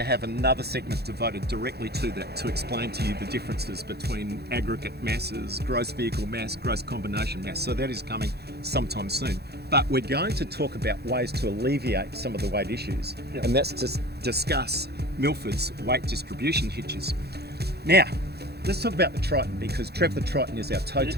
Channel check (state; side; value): late; left; 0.47 ms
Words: another segment devoted directly to that to explain to you the differences between aggregate masses, gross vehicle mass, gross combination mass. So that is coming sometime soon. But we're going to talk about ways to alleviate some of the weight issues. Yep. And that's to discuss Milford's weight distribution hitches. Now, let's talk about the Triton, because Trev the Triton is our tow You're tote